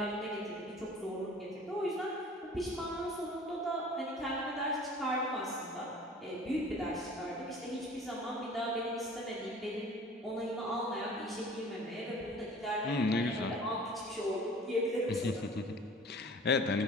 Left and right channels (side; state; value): both; normal; correlation 0.46